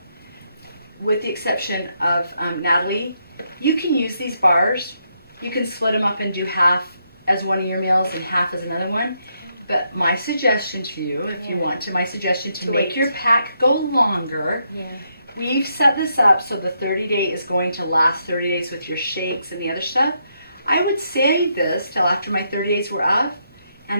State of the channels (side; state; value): both; inverted; correlation -0.78